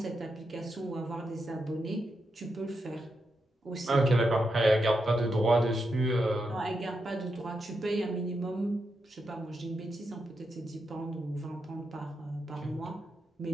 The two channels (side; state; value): both; normal; correlation 0.85